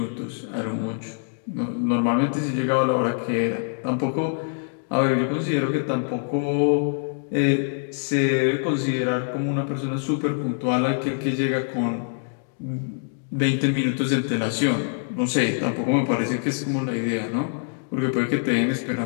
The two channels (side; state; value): right; silent; digital silence